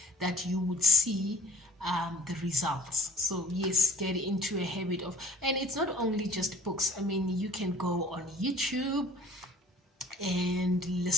that you would see the results. So yes, get into a habit of, and it's not only just books. I mean, you can go on YouTube and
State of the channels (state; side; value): normal; both; correlation 0.50